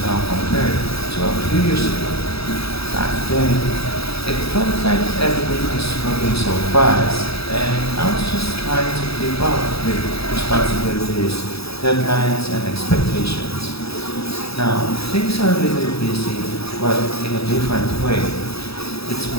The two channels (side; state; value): right; late; 0.77 ms